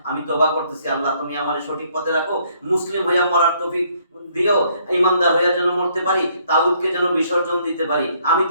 আমি তওবা করতেছি, আল্লাহ তুমি আমারে সঠিক পথে রাখো, মুসলিম হইয়া মরার তৌফিক দিও, ইমানদার হইয়া যেন মরতে পারি, তাগুতকে যেন বিসর্জন দিতে পারি। আমি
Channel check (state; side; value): inverted; both; correlation -0.67